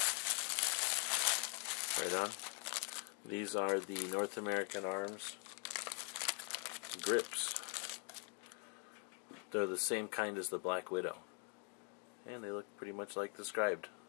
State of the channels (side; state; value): right; quieter; 39.7 dB